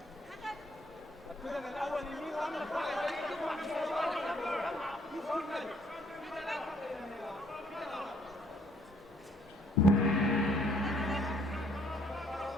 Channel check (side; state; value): both; normal; correlation 0.64